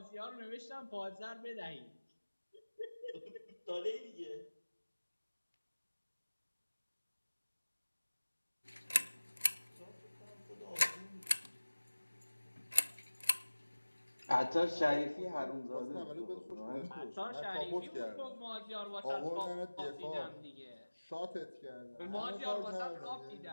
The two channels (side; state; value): both; inverted; correlation -1.00